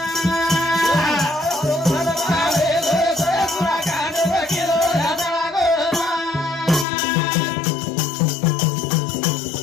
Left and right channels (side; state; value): right; drops out; at 6.9 s